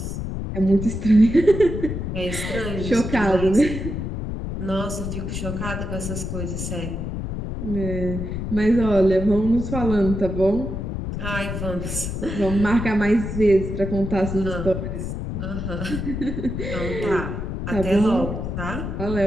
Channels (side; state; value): left; noise; rumble, 4 dB below the sound